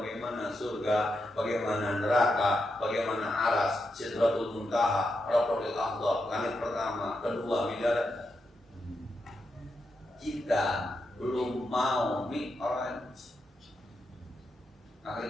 surga, bagaimana neraka, bagaimana aras, Sidratul Muntaha, Rabbul A'la, langit pertama, kedua, bidara. Kita belum mau Mi'raj.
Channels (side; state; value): both; normal; correlation 0.85